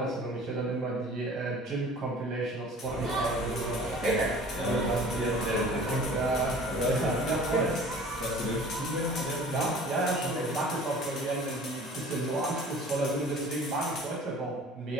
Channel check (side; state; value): both; normal; correlation 0.46